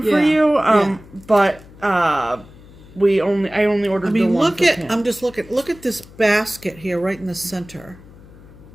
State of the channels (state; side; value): noise; left; hum, 21 dB below the sound